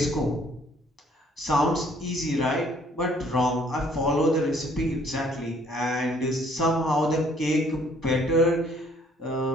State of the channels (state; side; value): normal; both; correlation 0.61